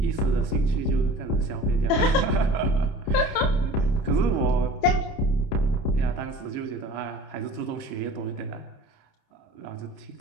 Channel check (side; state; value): right; late; 30 ms